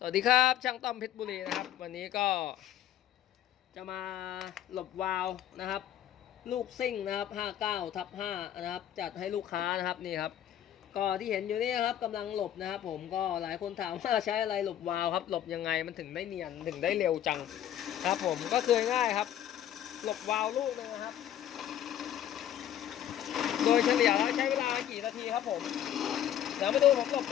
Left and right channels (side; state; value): right; quieter; 11.2 dB